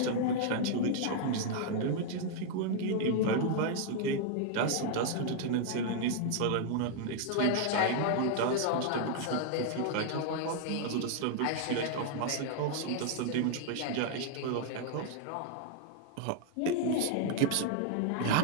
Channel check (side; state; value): both; different; correlation 0.00